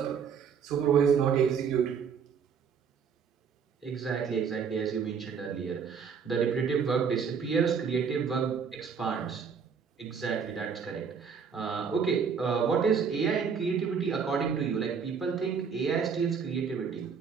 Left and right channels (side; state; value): left; quieter; 6.4 dB